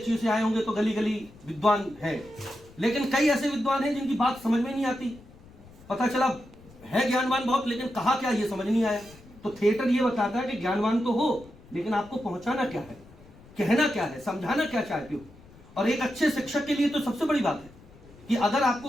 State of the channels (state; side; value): noise; left; rumble, 23 dB below the sound